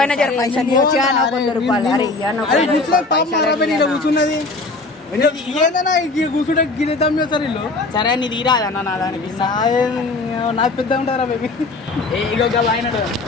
జర పైసలు ఇవ్వచ్చా నాకు 100 రూపాయలు అరే కూర్చున్నది ఏదన్నా కూర్చుంటే గిరిద్దాం చేస్తారు వీళ్ళు. సరే నీ తీరాదన్న నా దానికి నాకు పెద్ద ఉంటారా బేబీ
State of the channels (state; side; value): quieter; right; 3.4 dB